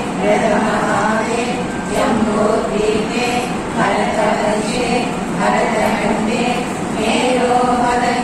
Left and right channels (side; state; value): both; identical; correlation 1.00